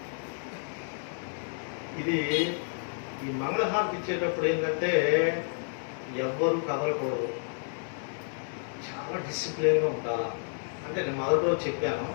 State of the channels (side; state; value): right; silent; 58 dB below the other